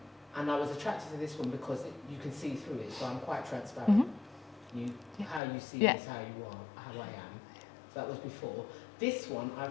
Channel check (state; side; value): drops out; right; at 5.4 s